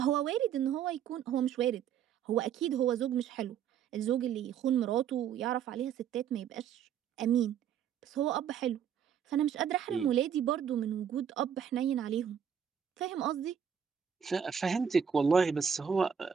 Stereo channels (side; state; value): left; quieter; 8.2 dB